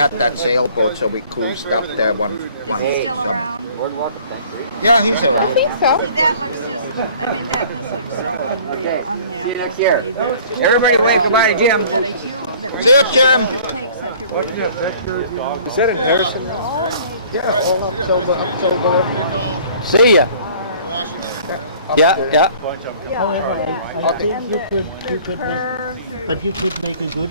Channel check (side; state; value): both; inverted; correlation -0.52